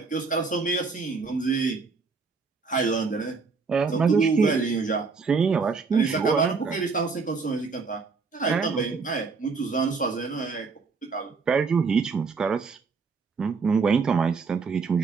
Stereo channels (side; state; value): left; quieter; 4.7 dB